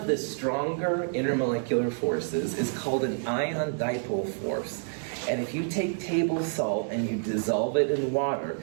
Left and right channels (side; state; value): left; silent; digital silence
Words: the stronger intermolecular forces is called an ion dipole force. And if you take table salt and you dissolve it in water,